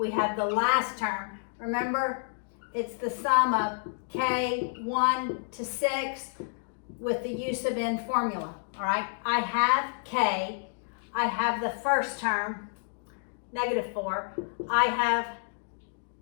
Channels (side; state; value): right; silent; digital silence